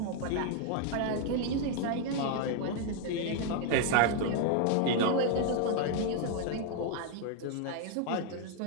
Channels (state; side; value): different; both; correlation 0.00